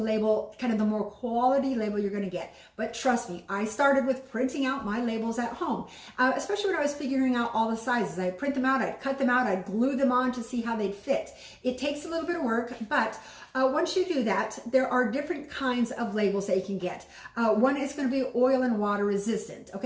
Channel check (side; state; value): both; identical; correlation 1.00